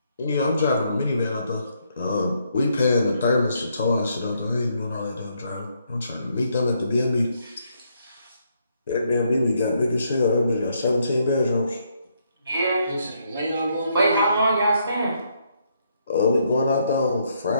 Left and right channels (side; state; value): both; inverted; correlation -0.74